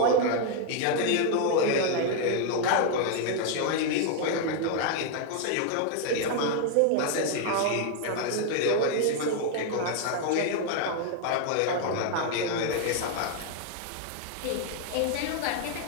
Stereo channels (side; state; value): both; different; correlation 0.00